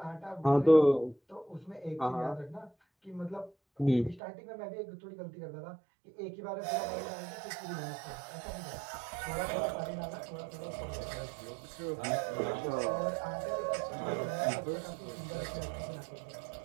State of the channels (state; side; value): drops out; left; at 4.2 s